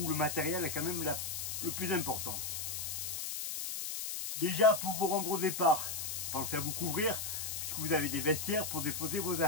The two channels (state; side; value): noise; left; hiss, 4 dB below the sound